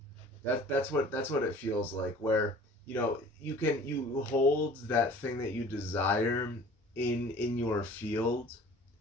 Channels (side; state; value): both; normal; correlation 0.47